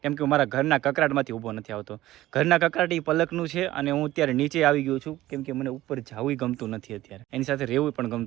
કેમ કે મારા ઘરના કકરાટમાંથી ઊભો નથી આવતો. ઘરના કકરાટ એ પલકનું છે અને હું અત્યારે નીચે આવી ગયો છું, કેમ કે મને ઉપર જવું ગમતું નથી અત્યારે. એની સાથે રહેવું પણ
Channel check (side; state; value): left; quieter; 15.7 dB